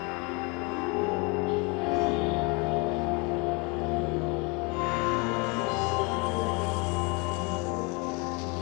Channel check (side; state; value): right; quieter; 29.8 dB